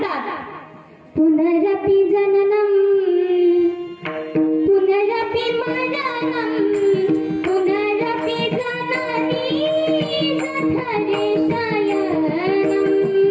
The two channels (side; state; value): both; identical; correlation 1.00